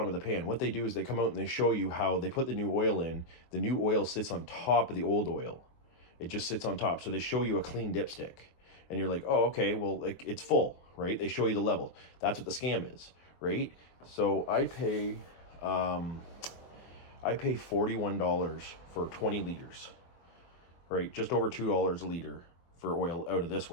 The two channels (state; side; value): late; right; 23 ms